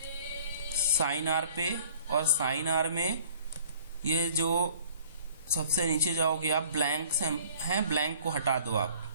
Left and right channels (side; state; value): both; inverted; correlation -0.53